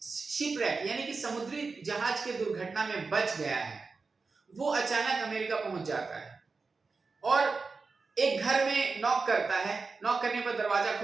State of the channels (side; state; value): left; quieter; 4.3 dB